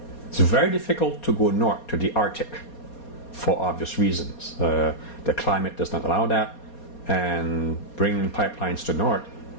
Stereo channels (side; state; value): right; late; 4.2 ms